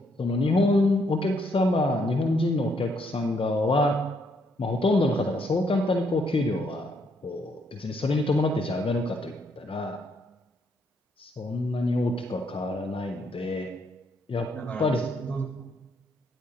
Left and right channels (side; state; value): both; normal; correlation 0.72